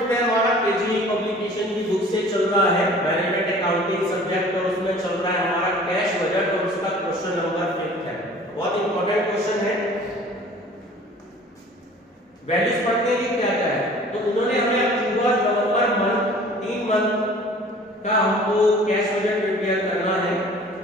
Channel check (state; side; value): normal; both; correlation 0.48